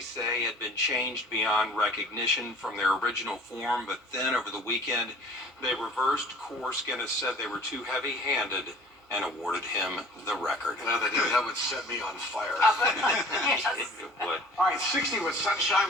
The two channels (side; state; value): both; normal; correlation 0.48